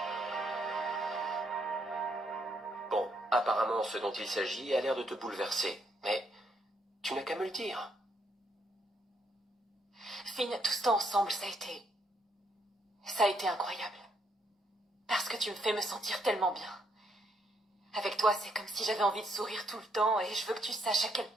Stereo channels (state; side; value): normal; both; correlation 0.73